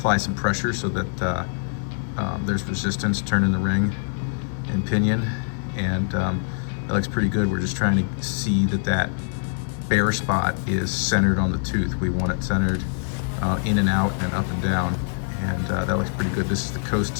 some pressure so that there's resistance turning the ring and pinion, and that looks pretty good. We're just trying to see that that bare spot is centered on the tooth. We want it centered in and out and up and down, and that looks pretty good. This is the coast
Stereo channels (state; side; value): silent; right; 63 dB below the other